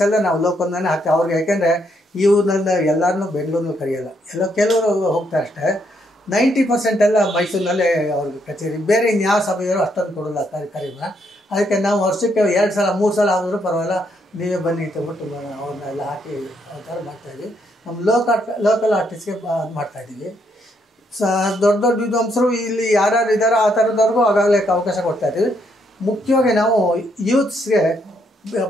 ಎಲ್ಲ ನಾವು ಲೋಕಲ್ನೇ ಹಾಕ್ತೀವಿ ಅವ್ರಿಗೆ. ಯಾಕೆಂದರೆ ಇವ್ರನ್ನ ಎಲ್ಲರನ್ನೂ ಬೆಂಗಳೂರಿನಲ್ಲಿ ಕರೆಯೋಲ್ಲ, ಕೆಲವರು ಹೋಗ್ತಾರೆ ಅಷ್ಟೇ. 90% ಎಲ್ಲ ಮೈಸೂರಿನಲ್ಲೇ ಅವ್ರಿಗೆ ಕಚೇರಿ. ಬೇರೆ ಇನ್ಯಾವ ಸಭೆಯವರು ಅಷ್ಟೊಂದು ಕೊಡೋಲ್ಲ ಕಾರ್ಯಕ್ರಮ. ಅದಕ್ಕೆ ನಾವು ವರ್ಷಕ್ಕೆ 2 ಸಲ 3 ಸಲ ಆದರೂ ಪರವಾಗಿಲ್ಲ, ನೀವೇ ಬನ್ನಿ ಅಂತಬಿಟ್ಟು ಅವ್ರನ್ನೆಲ್ಲ ಹಾಕಿ ಆ ಥರ ಮಾಡ್ತಾಯಿದ್ವಿ. ನಮ್ಮ ಲೋಕಲ್ ಆರ್ಟಿಸ್ಟ್ಗೆ ಮಾಡ್ತಾಯಿದ್ದೀವಿ. ದೊಡ್ಡ ವಿದ್ವಾಂಸರು ಇಲ್ಲಿ ಯಾರ್ಯಾರು ಇದ್ದಾರೋ ಆ ಥರದವ್ರಿಗೂ ಆಗಾಗಲೇ ಅವಕಾಶ ಕೊಡ್ತಾಯಿದ್ದೀವಿ. ಮುಖ್ಯವಾಗಿ ನಾವು ಯೂತ್ಸ್ಗೆ,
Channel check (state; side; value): normal; both; correlation 0.74